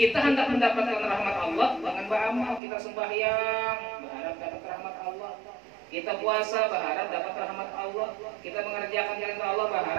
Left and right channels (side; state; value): left; drops out; at 2.6 s